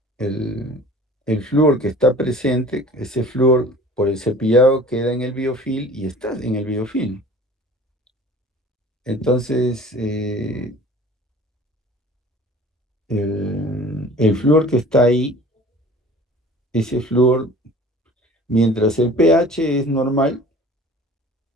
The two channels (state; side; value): normal; both; correlation 0.45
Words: el flúor que está presente, ese flúor por el cepillado queda en el biofilm y está en el biofilm. Entonces, el flúor que está ahí, ese flúor, mientras el pH es normal,